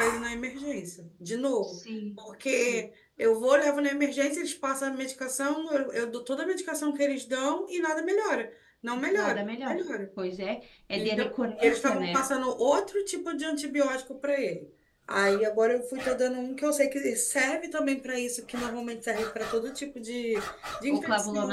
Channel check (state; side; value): identical; both; correlation 1.00